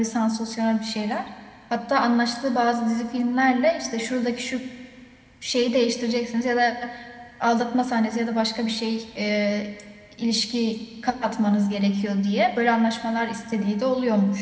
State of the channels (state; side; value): identical; both; correlation 1.00